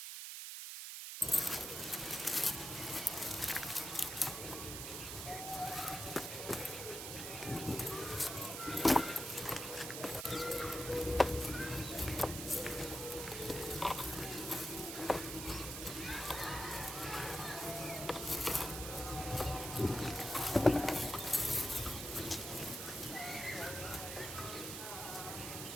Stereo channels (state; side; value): noise; right; hiss, 6 dB below the sound